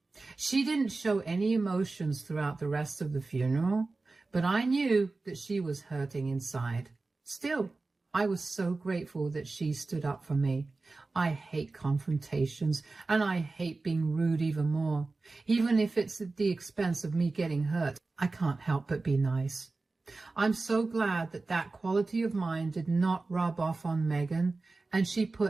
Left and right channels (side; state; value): left; quieter; 3.6 dB